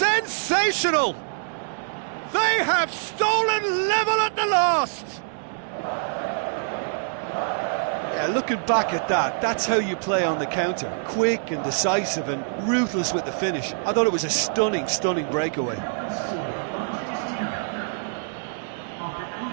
They have stolen level at the last! Yeah, looking back at that, that's how you play on the counter. Quick and decisive and ruthless with the finish. I thought it was a stunning, stunning breakaway.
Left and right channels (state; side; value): silent; left; digital silence